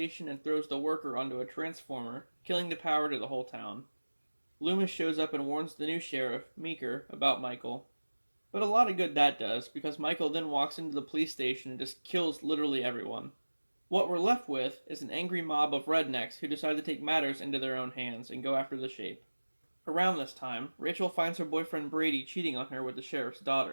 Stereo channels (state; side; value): inverted; both; correlation -1.00